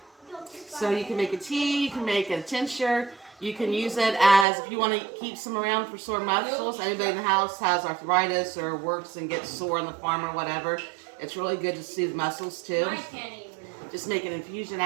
So you can make a tea, you can make a tincture, you can use it as, if you want to keep some around for sore muscles. Anybody in the house has arthritis or works and gets sore on the farm or whatever, it's really good to soothe muscles too. Just make an infusion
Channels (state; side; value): drops out; left; at 4.5 s